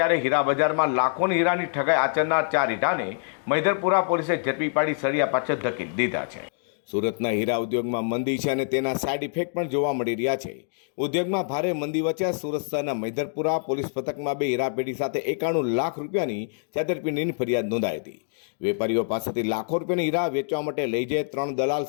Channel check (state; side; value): silent; right; digital silence